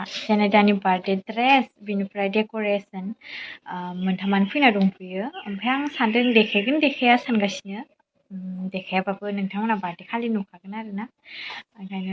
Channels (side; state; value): both; identical; correlation 1.00